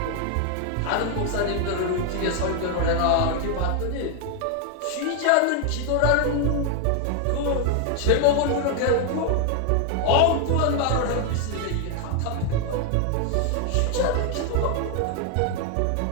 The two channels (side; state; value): both; different; correlation 0.00